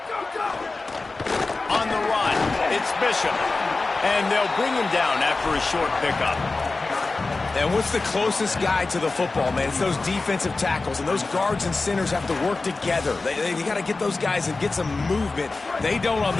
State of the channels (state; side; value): quieter; right; 3.6 dB